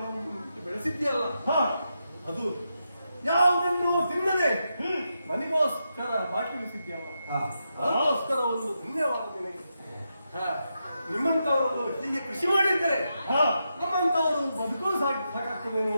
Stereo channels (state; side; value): inverted; both; correlation -0.85